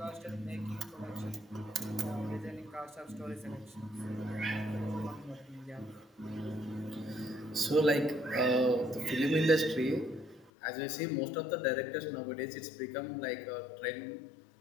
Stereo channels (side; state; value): right; drops out; at 10.5 s